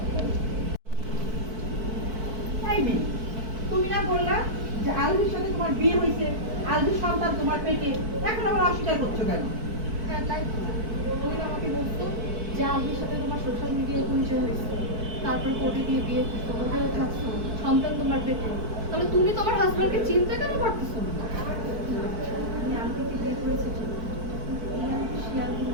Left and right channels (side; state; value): left; late; 4.5 ms